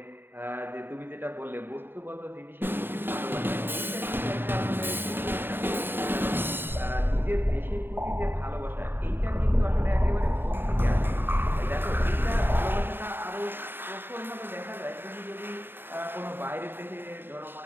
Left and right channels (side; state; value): left; late; 0.098 ms